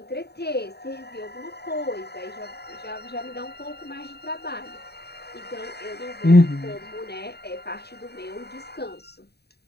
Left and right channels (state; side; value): late; right; 0.48 ms